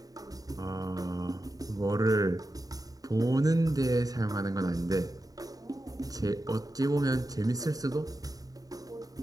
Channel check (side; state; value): left; late; 0.18 ms